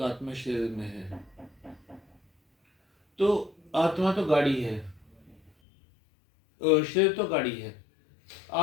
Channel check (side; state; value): right; drops out; at 5.5 s